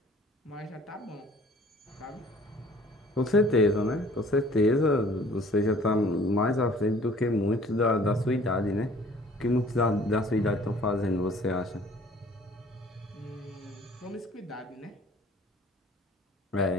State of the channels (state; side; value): normal; both; correlation 0.53